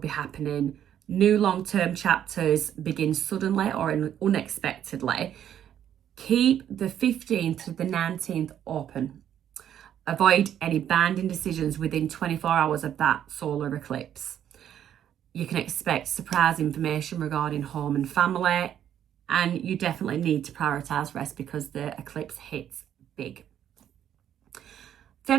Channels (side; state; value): left; quieter; 10.2 dB